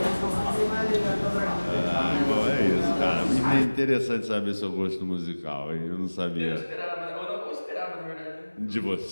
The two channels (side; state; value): both; inverted; correlation -1.00